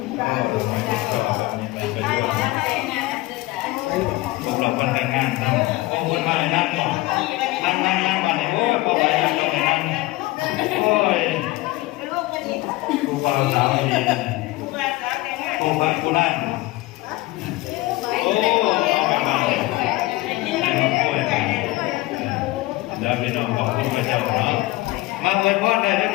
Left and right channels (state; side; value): quieter; right; 19.3 dB